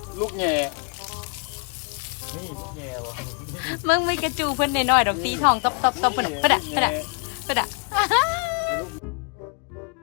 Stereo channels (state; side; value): quieter; right; 35.3 dB